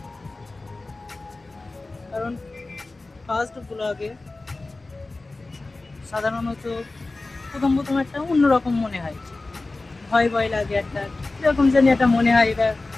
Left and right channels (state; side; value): quieter; right; 3.2 dB